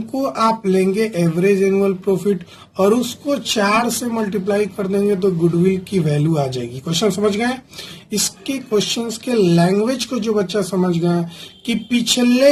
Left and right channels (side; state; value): both; identical; correlation 1.00